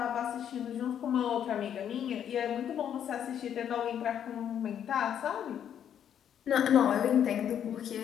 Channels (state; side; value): quieter; right; 9.3 dB